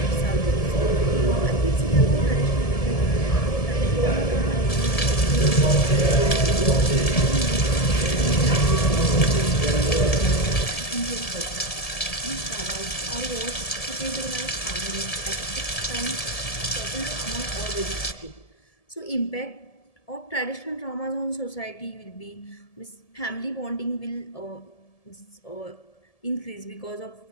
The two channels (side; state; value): right; late; 1.7 ms